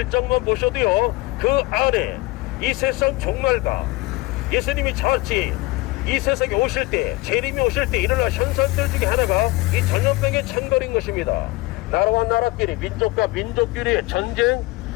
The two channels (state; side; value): quieter; right; 21.7 dB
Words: 보셔도요, 그 안에 이 세상 종말과 예수님이 자칫 이 세상에 오실 때, 재림이 오실 때 일어날 현상들 중에 하나가 이 전염병의 창궐인 것입니다. 나라와 나라끼리, 민족과 민족끼리의 전쟁,